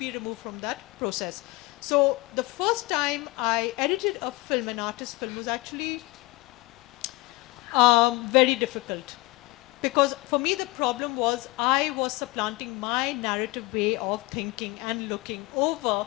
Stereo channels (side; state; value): right; quieter; 22.8 dB